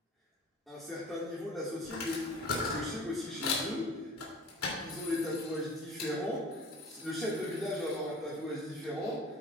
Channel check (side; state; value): both; normal; correlation 0.43